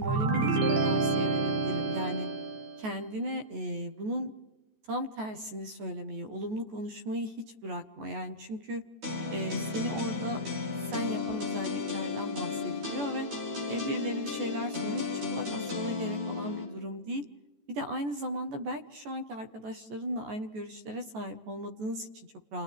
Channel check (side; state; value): left; late; 14 ms